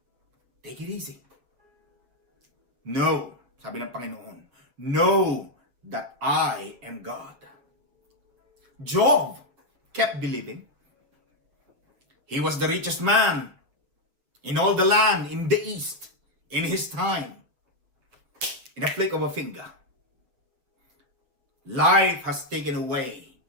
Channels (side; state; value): left; late; 7.9 ms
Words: Take it easy. No, sabi ng Panginoon, know that I am God. Job kept believing. He was the richest man in all the land, in the east, in his time. In a flick of a finger. Life has taken away